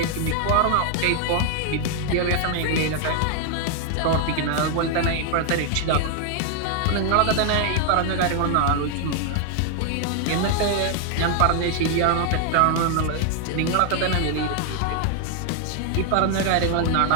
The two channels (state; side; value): different; both; correlation 0.00